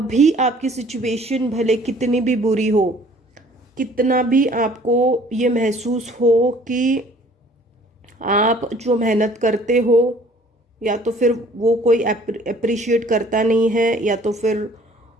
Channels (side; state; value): both; normal; correlation 0.55